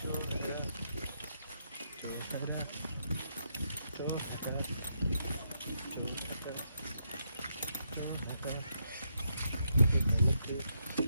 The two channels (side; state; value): both; inverted; correlation -0.79